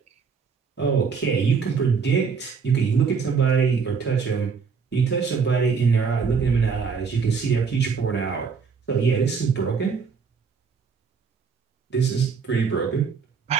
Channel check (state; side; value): quieter; left; 5.7 dB